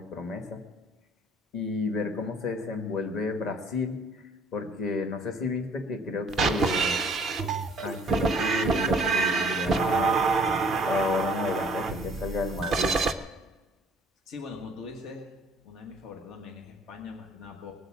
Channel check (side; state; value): both; normal; correlation 0.56